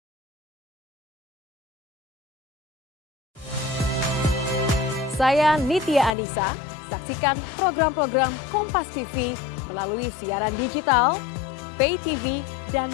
Saya Nitya Anissa, saksikan program-program Kompas TV melalui siaran digital, pay TV, dan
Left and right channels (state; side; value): drops out; right; at 6.1 s